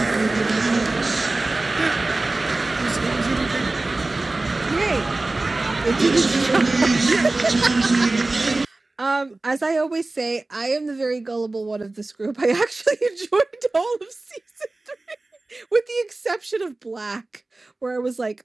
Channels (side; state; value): left; quieter; 3.1 dB